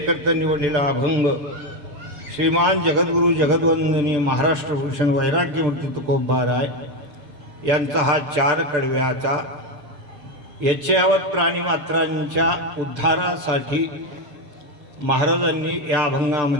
निवडलेला अभंग श्रीमान जगद्गुरु जगद्वंदनीय महाराष्ट्र भूषण वैराग्यमूर्ती तुकोबा राय यांचा हा 4 कडव्याचा यच्चयावत प्राणीमात्रांच्या उद्धारासाठी महाराजांनी या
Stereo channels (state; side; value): late; left; 6.8 ms